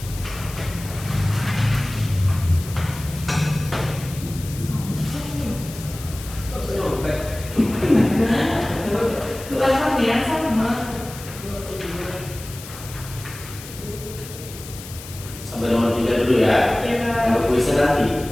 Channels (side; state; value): left; noise; hiss, 14 dB below the sound